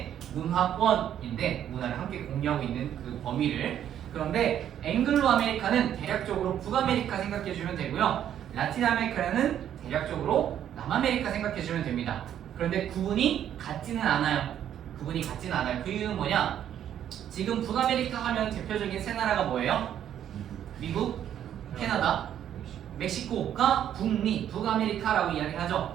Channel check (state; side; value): quieter; left; 10.2 dB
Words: 문화권인데 문화를 함께 공유하고 있는 그 범위를. 그런데 앵글로 아메리카는 대략적으로 북아메리카 생각해 주면 되고요. 라틴 아메리카는 대략적으로 남아메리카 생각해 주면 됩니다. 그런데 구분이 같지는 않아요. 그 이유는 뭐냐? 지금 북아메리카 하면 대표적인 세 나라가 뭐예요? 미국, 캐나다, 멕시코가 북미, 북아메리카라고